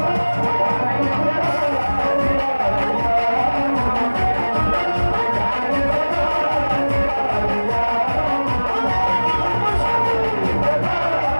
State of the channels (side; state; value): both; inverted; correlation -1.00